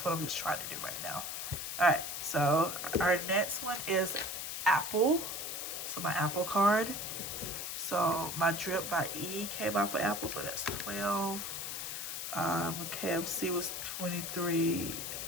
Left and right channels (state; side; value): noise; left; hiss, 5 dB below the sound